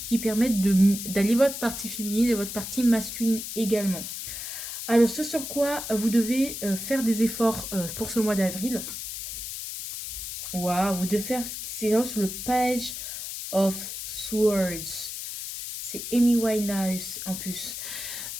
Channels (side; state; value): left; noise; hiss, 7 dB below the sound